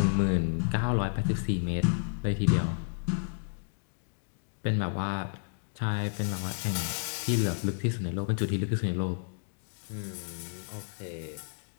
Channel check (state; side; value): silent; right; digital silence